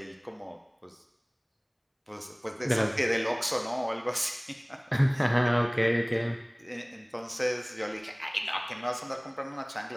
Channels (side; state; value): both; identical; correlation 1.00